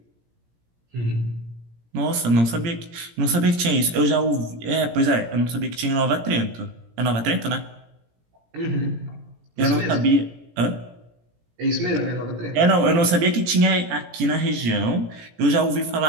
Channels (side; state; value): left; late; 17 ms